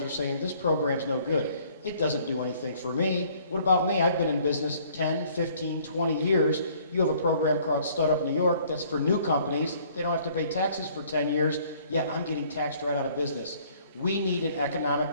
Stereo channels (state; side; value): inverted; both; correlation -0.59